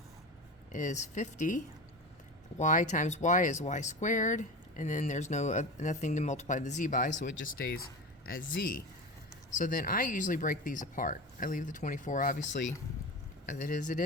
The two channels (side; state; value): both; normal; correlation 0.28